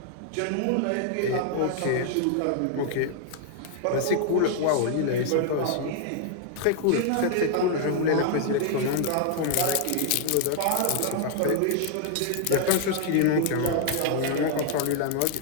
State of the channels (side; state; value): both; different; correlation 0.00